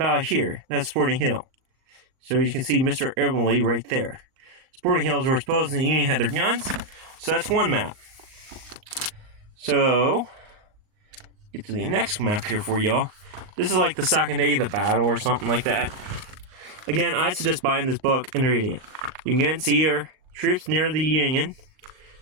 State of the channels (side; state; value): left; late; 39 ms